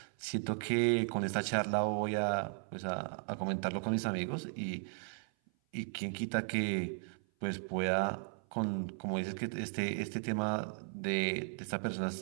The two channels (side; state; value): left; silent; 54 dB below the other